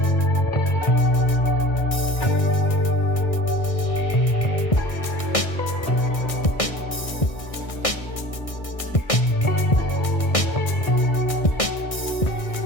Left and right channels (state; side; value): late; right; 1.6 ms